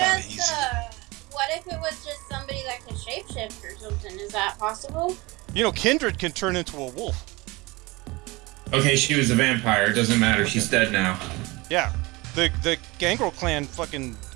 just easy. what if it was just somebody that could shapeshift or something? Is that possible? You know, Kindred can turn into a wolf. Okay, she was a vampire. It doesn't matter. She's dead now. Yeah, the Gangrel clan fucking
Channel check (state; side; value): quieter; left; 23.1 dB